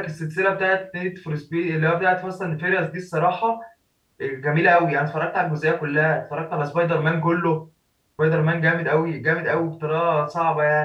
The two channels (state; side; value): identical; both; correlation 1.00